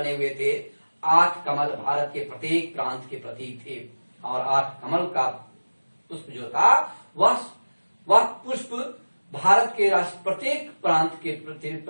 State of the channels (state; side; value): inverted; both; correlation -1.00